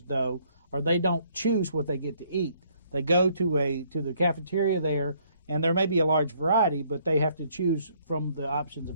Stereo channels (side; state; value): both; inverted; correlation -0.66